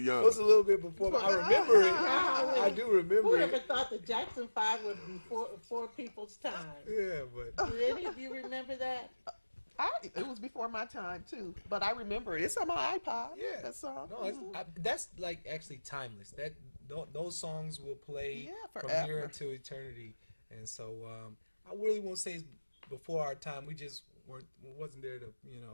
young. was a little bit before. I remember it. I do Who remember ever it. thought the Jackson Five would be before people's time? Yeah, but Do any of you remember that? It was before my time, too, but I remember it. It's on my iPod, yeah. that song. No, that's like actually timeless. Those songs will play Yeah, from here forever. until eternity. And so I really won't say it's before our time. We just wasn't there to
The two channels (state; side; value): inverted; both; correlation -1.00